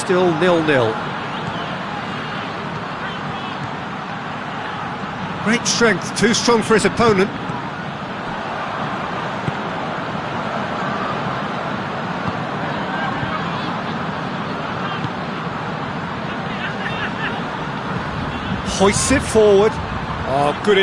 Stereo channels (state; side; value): identical; both; correlation 1.00